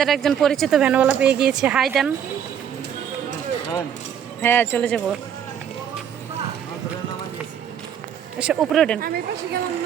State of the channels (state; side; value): quieter; left; 8.8 dB